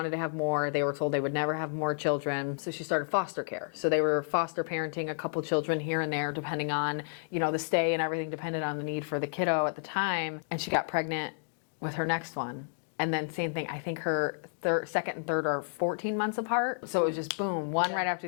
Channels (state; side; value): silent; right; digital silence